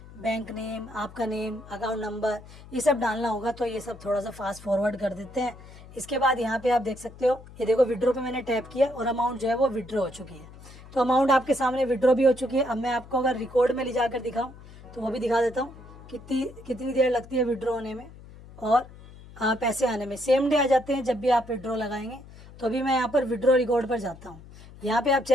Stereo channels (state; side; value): noise; left; hum, 19 dB below the sound